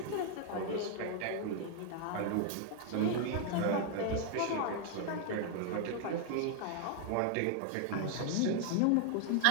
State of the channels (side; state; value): both; different; correlation 0.00